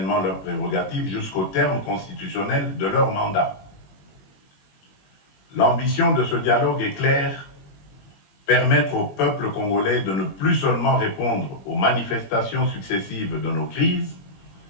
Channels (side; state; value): right; late; 21 ms